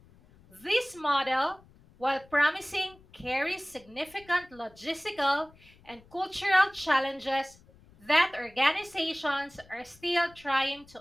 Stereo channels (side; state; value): left; noise; rumble, 26 dB below the sound